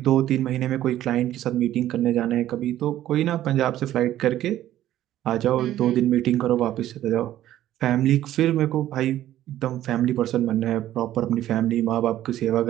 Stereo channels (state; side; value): quieter; left; 13.1 dB